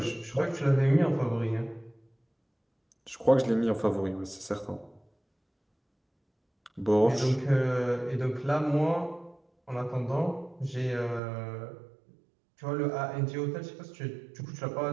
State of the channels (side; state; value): left; drops out; at 11.2 s